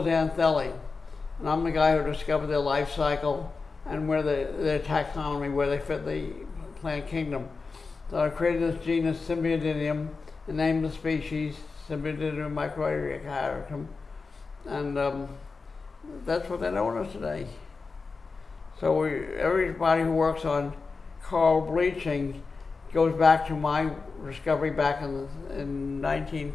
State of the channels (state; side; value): quieter; right; 4.4 dB